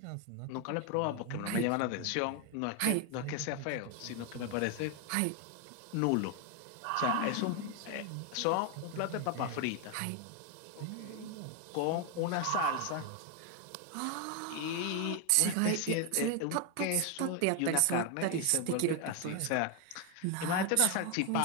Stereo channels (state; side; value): different; both; correlation 0.01